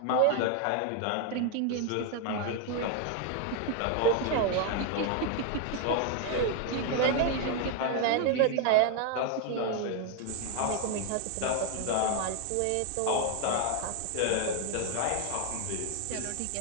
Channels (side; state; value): both; different; correlation 0.01